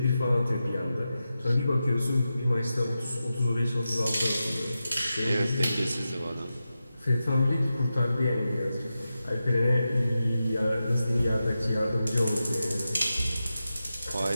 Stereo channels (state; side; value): inverted; both; correlation -0.91